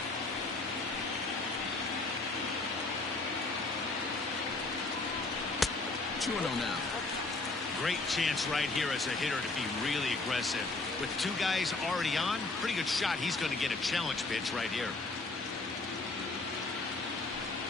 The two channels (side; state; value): right; quieter; 3.4 dB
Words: now. Great chance right here as a hitter to be really aggressive. With 2 guys already on, pretty good shot. He's going to get a challenge pitch right here.